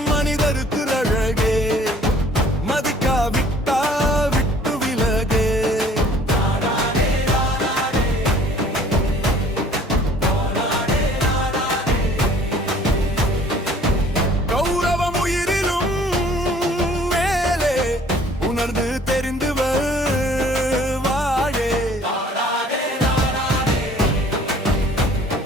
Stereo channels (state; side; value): normal; both; correlation 0.54